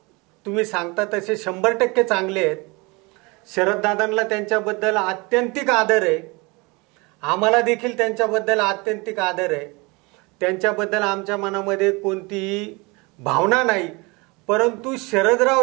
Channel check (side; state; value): left; quieter; 26.6 dB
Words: तुम्ही सांगता तसे 100% चांगले आहेत. शरददादांना त्यांच्याबद्दल आत्यंतिक आदर आहे. आम्हाला देखील त्यांच्याबद्दल आत्यंतिक आदर आहे. त्यांच्याबद्दल आमच्या मनामध्ये कोणतीही भावना नाही. परंतु शरदराव